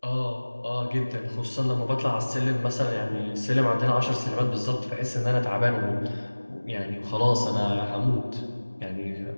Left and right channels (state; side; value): inverted; both; correlation -1.00